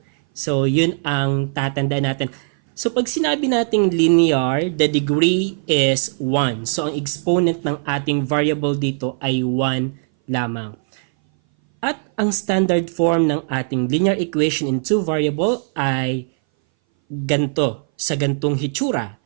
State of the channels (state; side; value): silent; left; 60 dB below the other